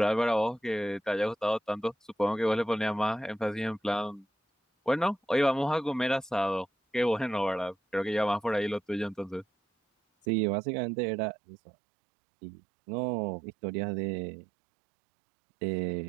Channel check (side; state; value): left; drops out; at 10.2 s